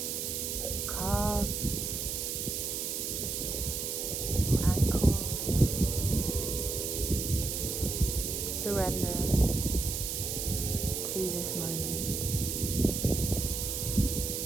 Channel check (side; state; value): right; noise; hiss, 2 dB below the sound